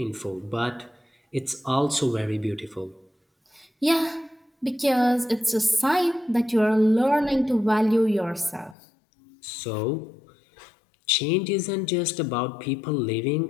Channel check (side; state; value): right; drops out; at 8.8 s